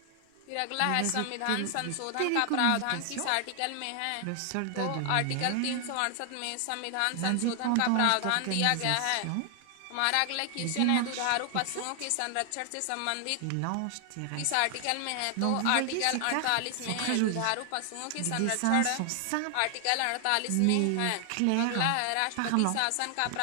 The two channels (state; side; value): different; both; correlation 0.00